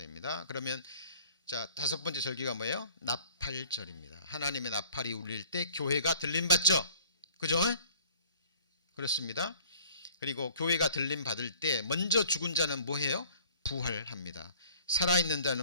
그러면 자, 다섯 번째 절기가 뭐예요? 나팔절입니다. 하나님의 나팔이 울릴 때 교회가 들림받죠. 그죠? 그렇습니다. 그리고 교회가 들림받을 때 먼저 죽은 자는 뭐해요? 부활합니다. 살아있는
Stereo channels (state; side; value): inverted; both; correlation -0.53